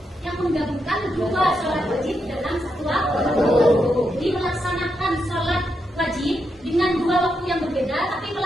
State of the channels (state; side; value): normal; both; correlation 0.83